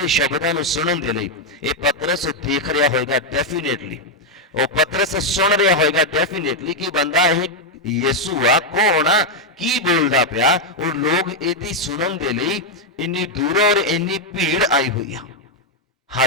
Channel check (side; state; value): both; normal; correlation 0.01